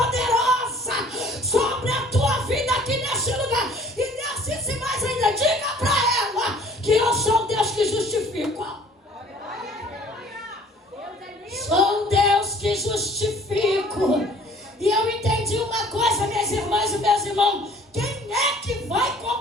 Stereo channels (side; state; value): both; normal; correlation 0.53